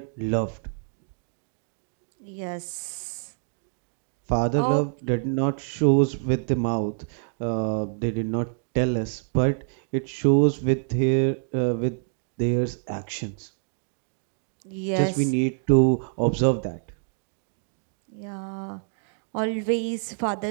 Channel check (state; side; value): silent; left; 60 dB below the other